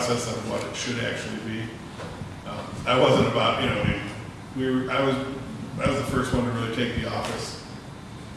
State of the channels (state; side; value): identical; both; correlation 1.00